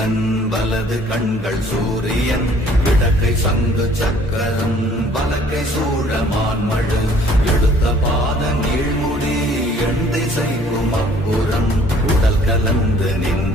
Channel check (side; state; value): both; normal; correlation 0.57